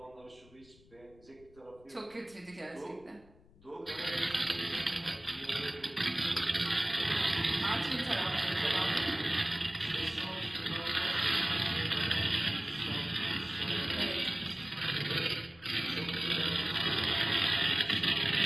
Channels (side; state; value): left; noise; rumble, 26 dB below the sound